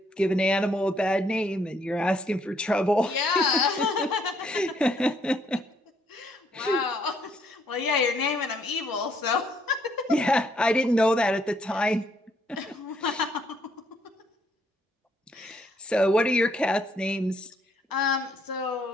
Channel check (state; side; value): normal; both; correlation 0.69